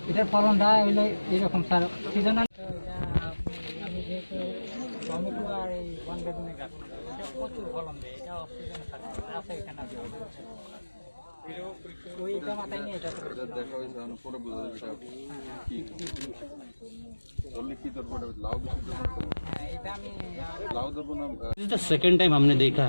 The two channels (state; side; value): inverted; both; correlation -1.00